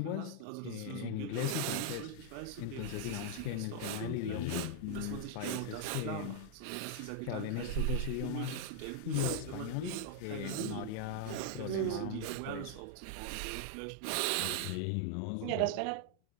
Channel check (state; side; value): different; both; correlation 0.00